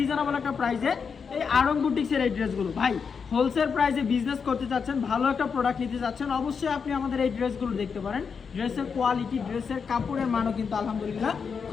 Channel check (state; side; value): quieter; right; 6.0 dB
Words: একটা প্রাইসে এই আরং বুটিক্সের এই ড্রেসগুলো। ভাই হোলসেল প্রাইসে বিজনেস করতে চাচ্ছেন, ভালো একটা প্রোডাক্ট নিতে চাচ্ছেন, অবশ্যই আপনি আমাদের এই ড্রেসগুলো দেখতে পারেন। ড্রেসের কোয়ালিটি, ড্রেসের কাপড়ের মানও কিন্তু আলহামদুলিল্লাহ